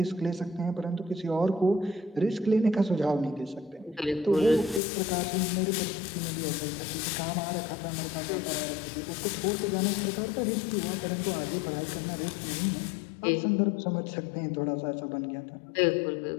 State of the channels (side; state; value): right; drops out; at 4.8 s